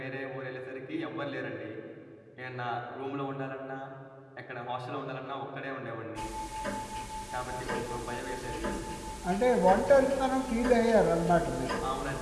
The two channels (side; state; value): both; identical; correlation 1.00